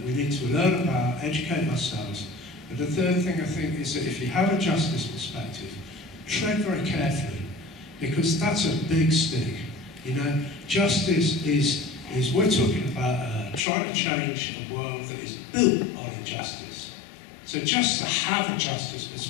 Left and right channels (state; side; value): drops out; right; at 13.7 s